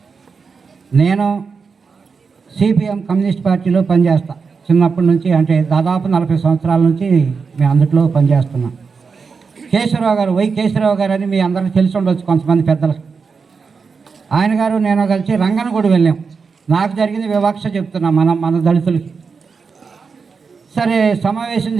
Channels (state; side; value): quieter; left; 5.2 dB